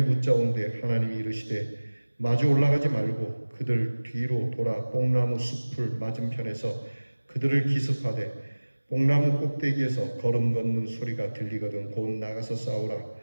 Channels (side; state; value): both; inverted; correlation -1.00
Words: 묻자온데 하나님이 이르시되 마주 올라가지 말고 그들 뒤로 돌아 뽕나무 숲을 맞은편에서 그들을 기습하되 뽕나무 꼭대기에서 걸음 걷는 소리가 들리거든 곧 나가서